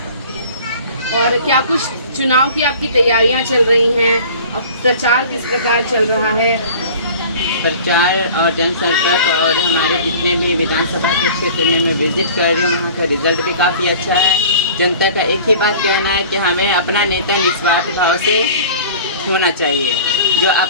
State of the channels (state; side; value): inverted; both; correlation -0.43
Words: और क्या कुछ चुनाव की आपकी तैयारियां चल रही हैं? अब प्रचार किस प्रकार चल रहा है? प्रचार और जनसंपर्क और हमारे जितने भी विधानसभा के क्षेत्र में मैं विजिट कर रही हूँ, वहाँ का रिजल्ट भी काफ़ी अच्छा है। जनता का एक ही बात कहना है कि हमें अपना नेता निस्वार्थ भाव से होना चाहिए। जो